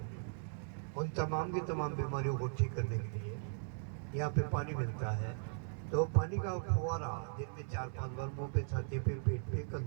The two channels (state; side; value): silent; left; digital silence